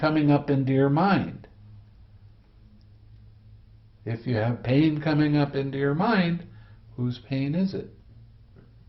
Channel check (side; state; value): both; identical; correlation 1.00